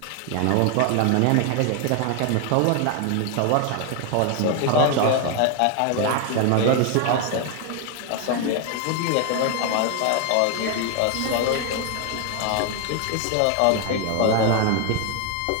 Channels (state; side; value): different; both; correlation 0.01